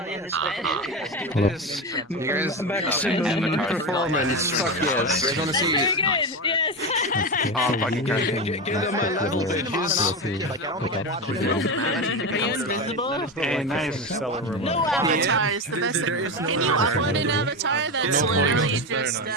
this bit. Maximum performance. Fuck yes. We're gonna see. Very good. Yes. Give them a little bitches. Are you invisible? hey, nice. No avatar is the best. Can you upload an avatar that's literally just a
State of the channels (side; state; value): both; normal; correlation 0.18